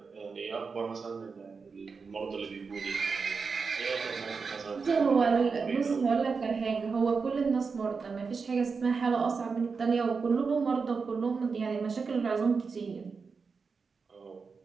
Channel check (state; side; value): quieter; left; 5.0 dB